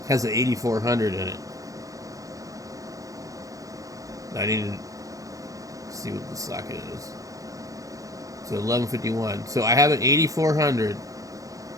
has an 8400 in it. I need to see what the socket is. So 1151. So I have an 8400.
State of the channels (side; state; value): left; late; 0.16 ms